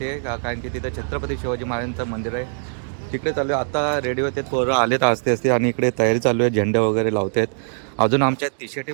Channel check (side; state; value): left; silent; digital silence